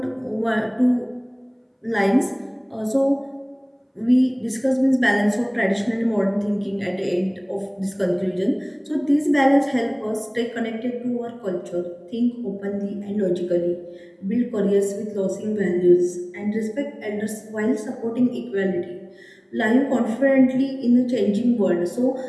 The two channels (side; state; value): both; identical; correlation 1.00